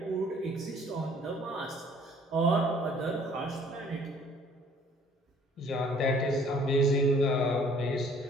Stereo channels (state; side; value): normal; both; correlation 0.57